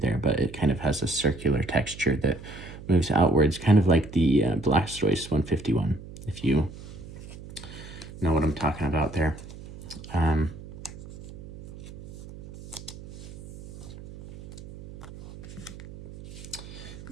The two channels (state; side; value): noise; right; hum, 15 dB below the sound